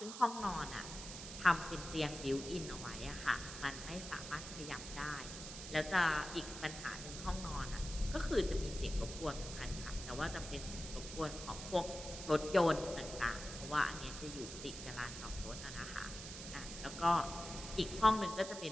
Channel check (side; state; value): right; noise; hiss, 9 dB below the sound